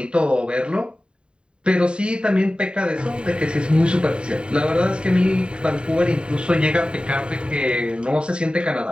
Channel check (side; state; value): left; late; 0.052 ms